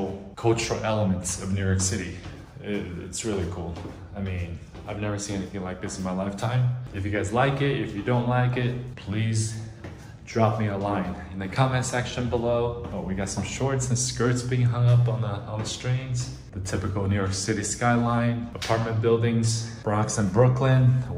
cultural elements of New York City. It's really cool. I mean, I've never seen anything like this in my lifetime. If you guys like it, if you don't like it, please drop me a line in the comment section below. Oh, we got some shorts and skirts being hung up on the strings. The typical New York City skyline, apartment buildings, Bronx and Brooklyn,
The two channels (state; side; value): identical; both; correlation 1.00